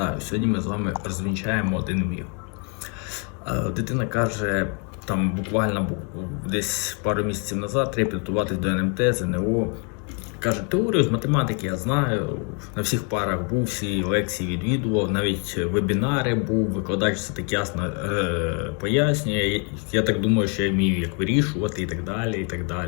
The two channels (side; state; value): right; quieter; 36.4 dB